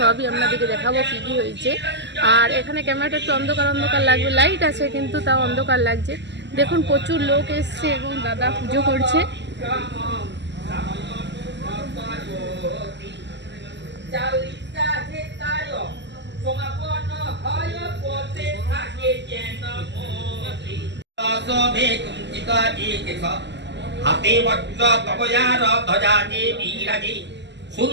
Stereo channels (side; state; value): left; late; 0.51 ms